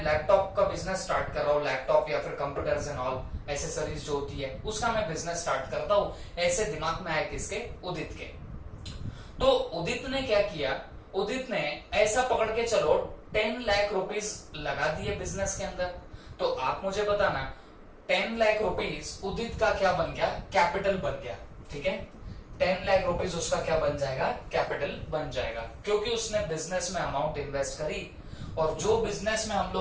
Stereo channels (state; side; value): identical; both; correlation 1.00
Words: लैपटॉप का बिजनेस स्टार्ट कर रहा हूँ, लैपटॉप या फिर कंप्यूटर्स एंड ऑल एसेसरीज जो होती है उसका मैं बिजनेस स्टार्ट करता हूँ, ऐसे दिमाग में आया किसके, उदित के। तो उदित ने क्या किया, उदित ने ऐसा पकड़ के चलो 10 लाख रुपीस लगा दिए बिजनेस के अंदर। तो आप मुझे बताना 10 लाख रुपीस उदित का क्या बन गया, कैपिटल बन गया, ठीक है। 10 लाख रुपीस उसका क्या बन जाएगा, कैपिटल बन जाएगा, क्योंकि उसने बिजनेस में अमाउंट इन्वेस्ट करी। और जो बिजनेस में हम